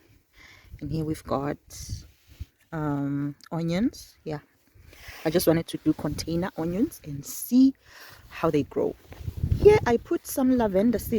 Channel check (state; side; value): identical; both; correlation 1.00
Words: And here we've got onions. Yeah, I just wanted to do container onions and see how they grow. Here I put some lavender